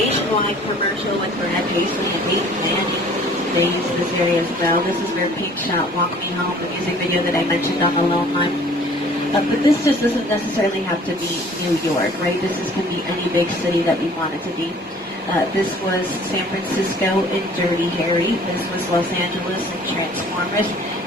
commercial with Brad Paisley and Peyton Manning. They use this area as well. This is where Pink shot Walk Me Home, the music video that I mentioned on the Lone Line. But this just doesn't necessarily have to be New York, right? Can be any big city that we want it to be. This was San Francisco in Dirty Harry. This was Los Angeles in Transformers.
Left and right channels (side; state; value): both; normal; correlation 0.52